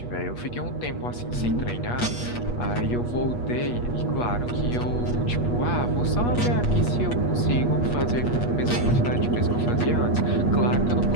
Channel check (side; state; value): right; late; 8.3 ms